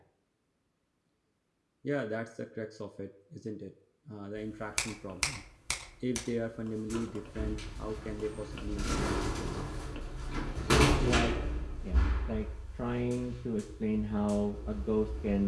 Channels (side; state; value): both; identical; correlation 1.00